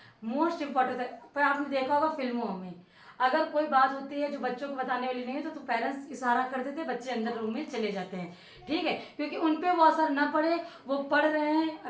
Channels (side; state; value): both; identical; correlation 1.00